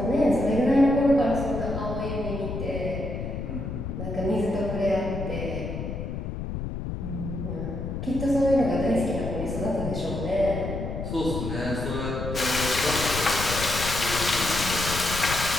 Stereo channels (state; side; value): noise; left; rumble, 5 dB below the sound